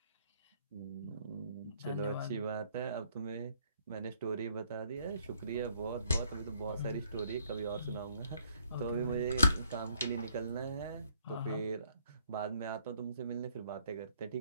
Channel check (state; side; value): inverted; both; correlation -0.66